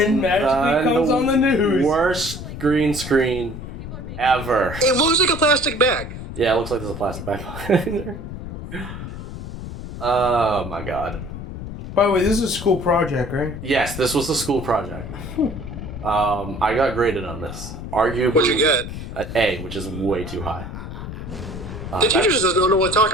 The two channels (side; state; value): left; noise; rumble, 9 dB below the sound